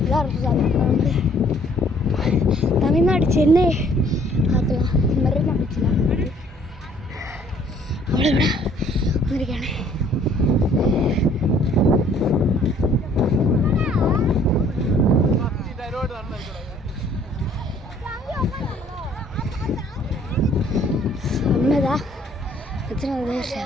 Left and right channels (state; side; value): normal; both; correlation 0.59